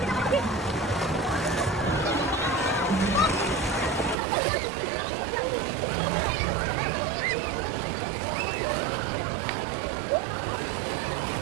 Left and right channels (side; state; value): left; drops out; at 4.2 s